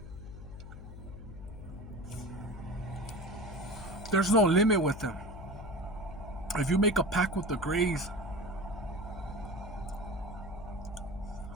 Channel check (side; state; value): left; noise; hum, 12 dB below the sound